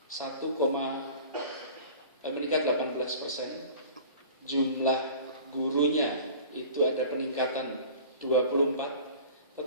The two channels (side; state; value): both; inverted; correlation -0.44